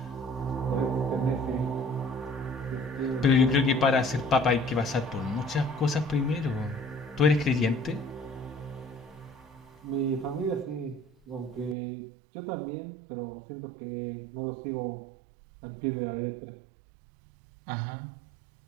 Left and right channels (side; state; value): left; drops out; at 11.8 s